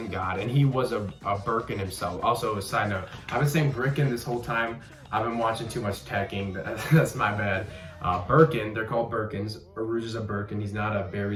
God, and he was a Brickan himself. Also, a side note, I've been saying Brickan this whole time. I've been watching too much teching, that's my bad. Brickan, they're called Brickans. Urouge is a Brickan, he's not a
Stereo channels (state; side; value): identical; both; correlation 1.00